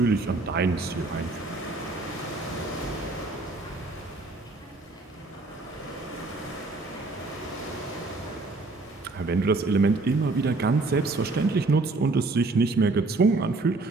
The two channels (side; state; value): left; quieter; 3.3 dB